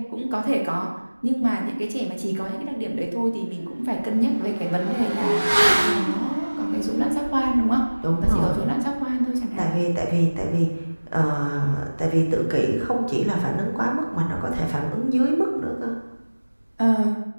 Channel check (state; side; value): inverted; both; correlation -1.00